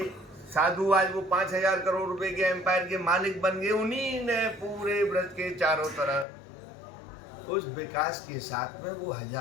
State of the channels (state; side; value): drops out; right; at 6.2 s